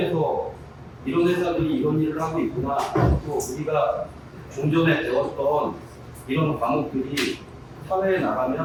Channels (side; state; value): both; identical; correlation 1.00